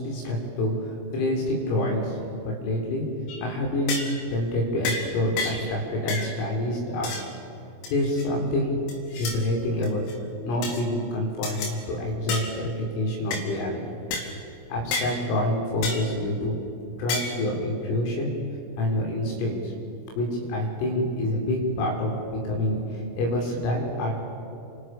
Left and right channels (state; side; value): late; right; 25 ms